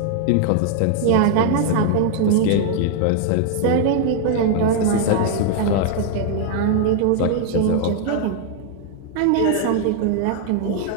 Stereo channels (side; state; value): both; different; correlation 0.00